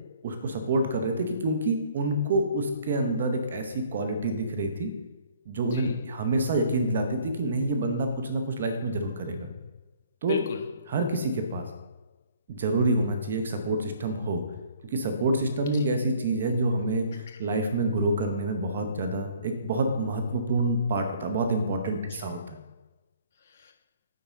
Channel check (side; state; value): both; inverted; correlation -0.57